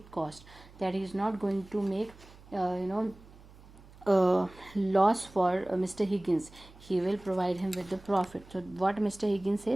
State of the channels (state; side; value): noise; right; hum, 22 dB below the sound